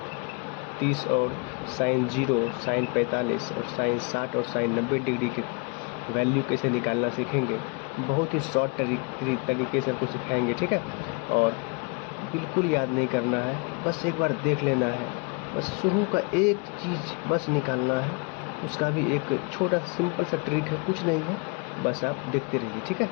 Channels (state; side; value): quieter; right; 32.6 dB